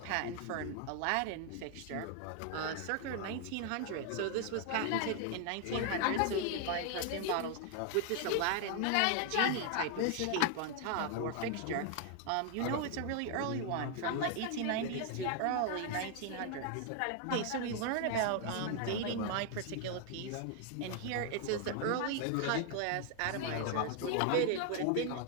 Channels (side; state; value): both; different; correlation 0.00